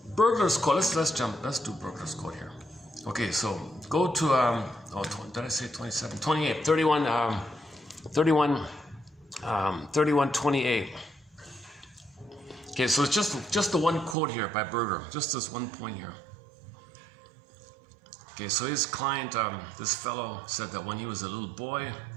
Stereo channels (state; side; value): drops out; left; at 14.2 s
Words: Burglar's Code, let's do Burglar's Code here. Okay, so go to, did I say 27? 28, 3128. Okay, so it's just the one quote here by Berger, just this one point here. Okay, so his client, this fellow, said that when he was a little boy,